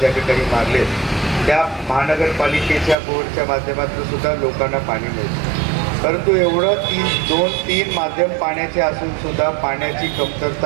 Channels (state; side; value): drops out; left; at 3.0 s